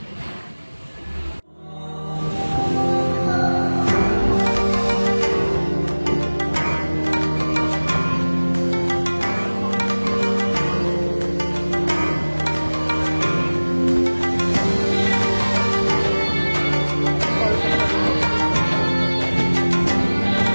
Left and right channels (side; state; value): both; inverted; correlation -1.00